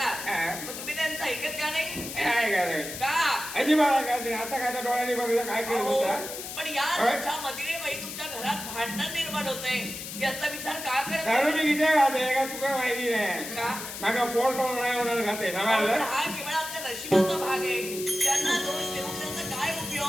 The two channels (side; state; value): left; noise; hiss, 8 dB below the sound